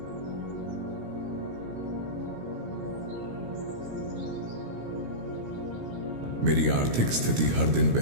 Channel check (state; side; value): late; left; 17 ms